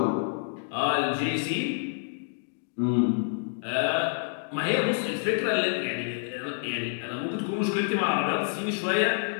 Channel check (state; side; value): silent; right; digital silence